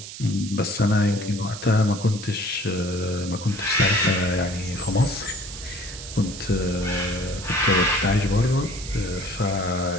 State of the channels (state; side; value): noise; right; hiss, 12 dB below the sound